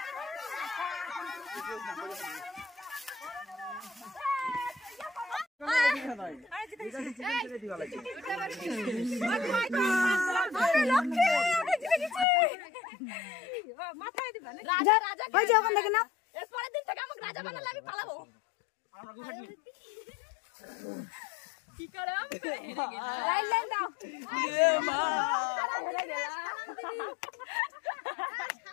ওই যে ওখান থেকে না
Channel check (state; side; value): drops out; right; at 12.2 s